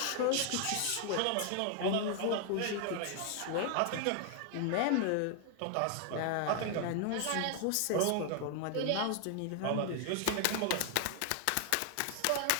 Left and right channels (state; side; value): different; both; correlation 0.00